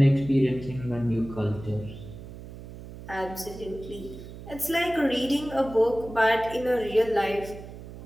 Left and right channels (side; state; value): right; noise; hum, 14 dB below the sound